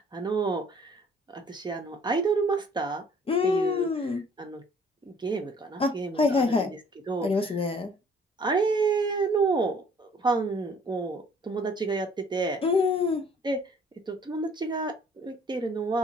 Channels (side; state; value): both; normal; correlation 0.56